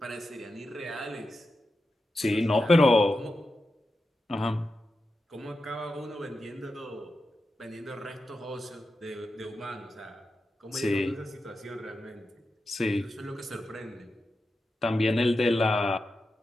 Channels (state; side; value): normal; both; correlation 0.90